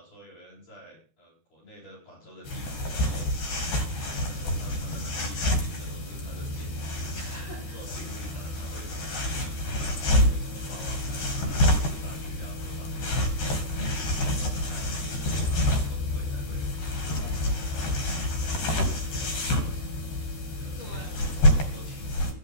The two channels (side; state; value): right; late; 13 ms